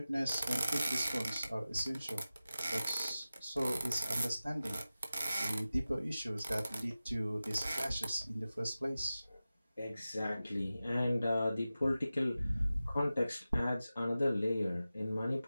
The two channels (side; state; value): both; inverted; correlation -0.95